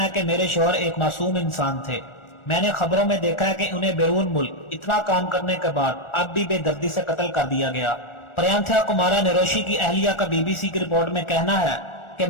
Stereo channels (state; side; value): late; right; 1.4 ms